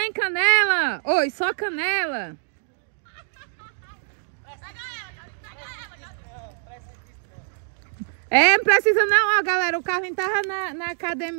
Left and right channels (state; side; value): silent; left; digital silence